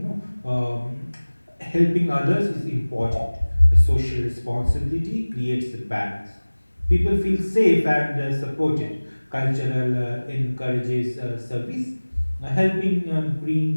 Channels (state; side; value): inverted; both; correlation -1.00